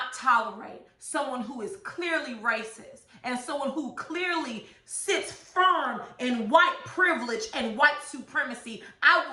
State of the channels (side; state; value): both; identical; correlation 1.00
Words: tolerate someone who is clearly racist and someone who clearly sits firm in white privilege and white supremacy. I